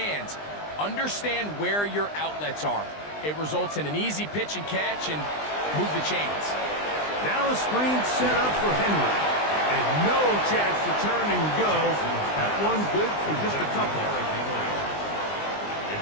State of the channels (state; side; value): late; right; 20 ms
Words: Understand where your outlets are. It results in an easy pitch and catch and move the chains. Now a screen set up for Henry. And no chance to turn and go. That one good for just a couple.